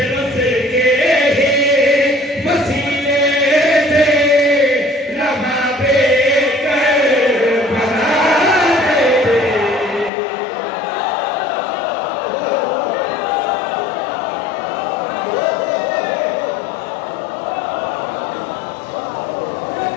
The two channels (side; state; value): right; drops out; at 10.1 s